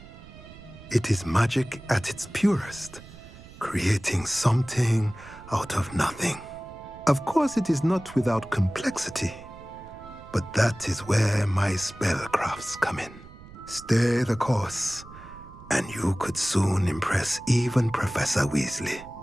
It is magic at its purest, creating something out of nothing. Of course, it is not without complexity, but that is where my spellcrafts come in. Stay the course, and you could soon impress even Professor Weasley.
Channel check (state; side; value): noise; right; rumble, 18 dB below the sound